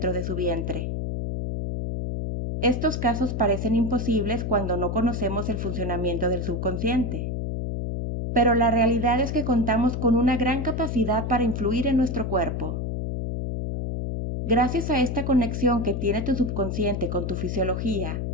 de su vientre. Estos casos parecen imposibles cuando no conocemos el funcionamiento del subconsciente. Pero la realidad es que contamos con una gran capacidad para influir en nuestro cuerpo. Gracias a esta conexión que tiene tu subconsciente con tu fisiología,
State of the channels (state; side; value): noise; left; hum, 2 dB below the sound